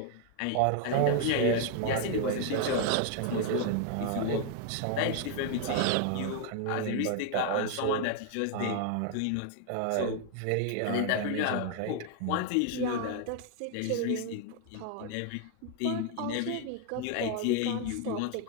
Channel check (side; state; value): both; different; correlation 0.00